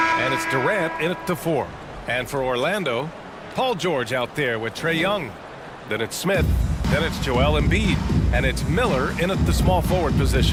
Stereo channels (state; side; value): identical; both; correlation 1.00